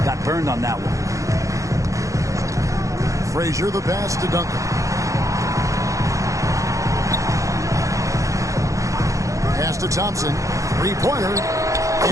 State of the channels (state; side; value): late; left; 0.15 ms